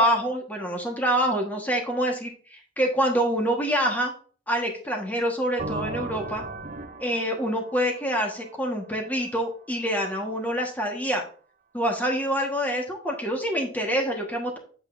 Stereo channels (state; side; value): normal; both; correlation 0.42